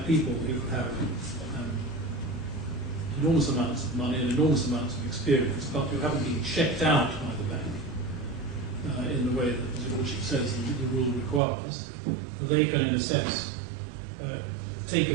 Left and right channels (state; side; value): drops out; left; at 11.4 s